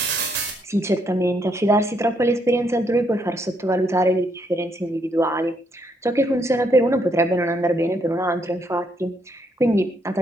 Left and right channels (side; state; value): both; normal; correlation 0.74